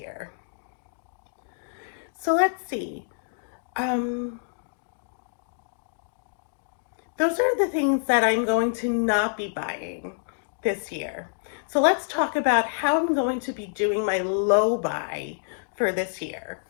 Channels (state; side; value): silent; right; digital silence